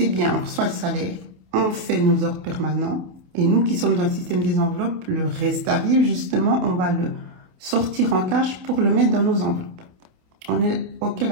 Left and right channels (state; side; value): late; left; 27 ms